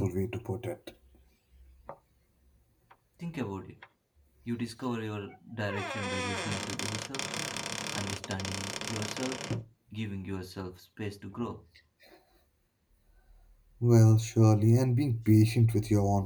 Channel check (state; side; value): identical; both; correlation 1.00